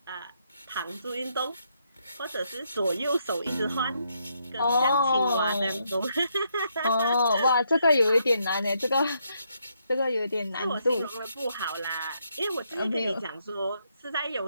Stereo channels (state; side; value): inverted; both; correlation -0.76